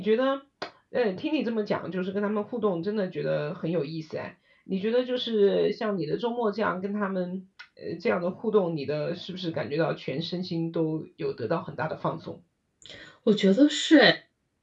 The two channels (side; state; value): both; identical; correlation 1.00